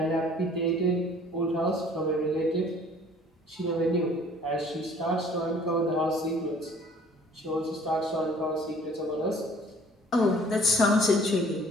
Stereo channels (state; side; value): normal; both; correlation 0.53